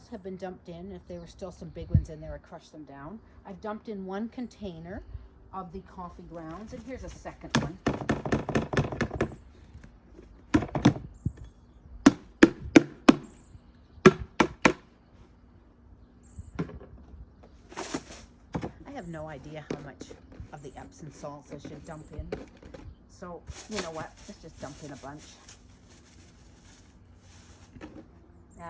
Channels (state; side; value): identical; both; correlation 1.00